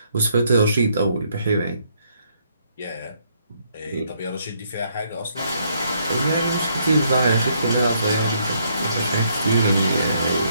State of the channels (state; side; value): inverted; both; correlation -0.71